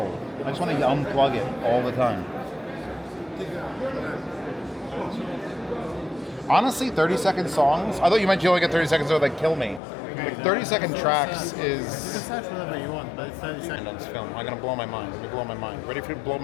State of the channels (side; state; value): right; drops out; at 9.8 s